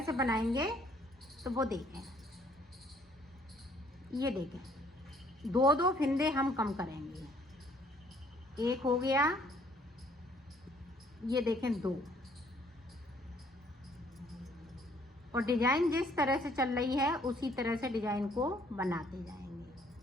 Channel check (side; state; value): both; normal; correlation 0.63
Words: से बनाएंगे तो वो देखें। ये देखें दो दो फिंदे हम कम करेंगे। एक हो गया, ये देखें दो। और डिजाइन जिस तरह से चल रही है उसी तरह से डिजाइन को बनाते